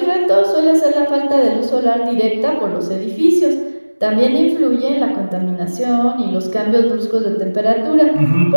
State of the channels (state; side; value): inverted; both; correlation -1.00